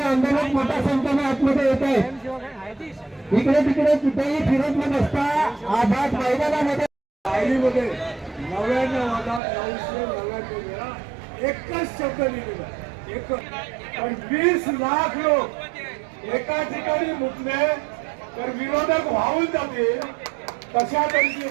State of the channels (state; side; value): drops out; left; at 9.4 s